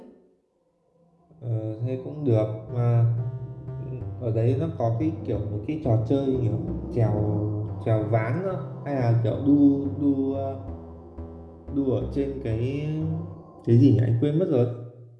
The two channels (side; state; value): both; identical; correlation 1.00